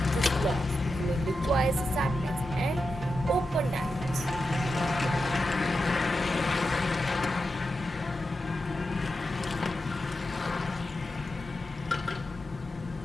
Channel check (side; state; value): both; normal; correlation 0.89